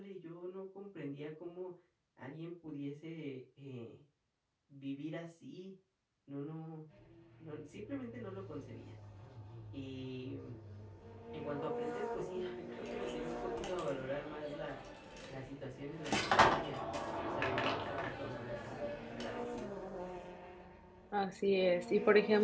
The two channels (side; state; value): both; identical; correlation 1.00